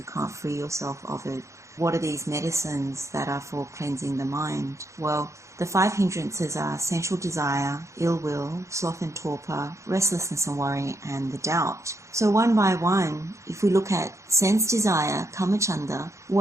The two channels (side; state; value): left; late; 0.14 ms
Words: can't free yourself of it. What are these medicines that are for cleansing the mind? Well, the 5 hindrances are sensual desire, ill will, sloth and torpor, restlessness and worry, and the doubt. So one by one, if we look at sense desire, kamacchanda,